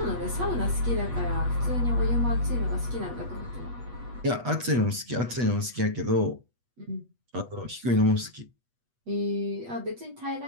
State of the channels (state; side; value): late; left; 8.2 ms